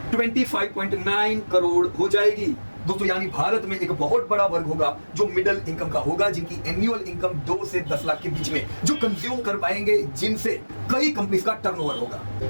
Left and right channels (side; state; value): both; inverted; correlation -1.00